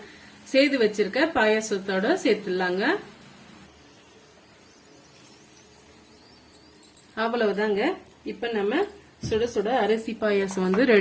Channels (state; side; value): identical; both; correlation 1.00